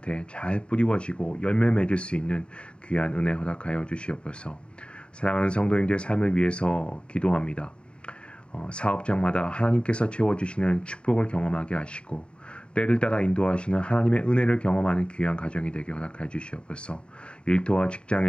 잘 뿌리워지고 열매 맺을 수 있는 귀한 은혜 허락하여 주시옵소서. 사랑하는 성도님들의 삶을 위해서 기도합니다. 사업장마다 하나님께서 채워주시는 축복을 경험하게 하시고 때를 따라 인도하시는 하나님의 은혜를 경험하는 귀한 가정이 되게 허락해 주시옵소서. 일터와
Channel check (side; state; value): right; late; 0.054 ms